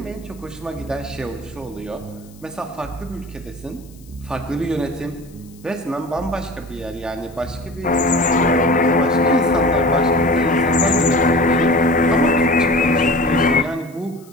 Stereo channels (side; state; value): left; noise; hiss, 27 dB below the sound